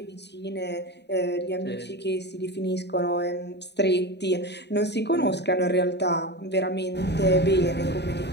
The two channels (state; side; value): late; right; 0.50 ms